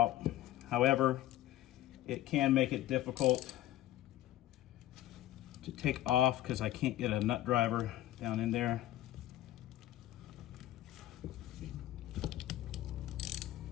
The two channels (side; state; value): right; quieter; 14.3 dB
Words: However, it can make it difficult to take off because I can't get a nut driver down in there.